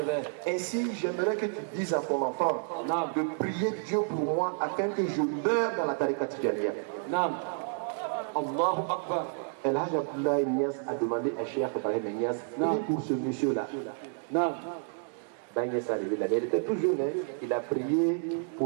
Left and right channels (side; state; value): left; silent; 58 dB below the other